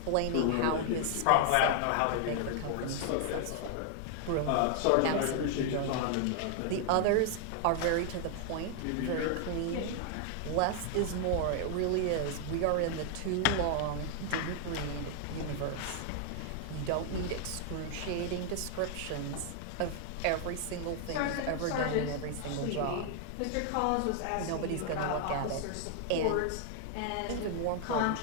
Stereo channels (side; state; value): both; different; correlation 0.00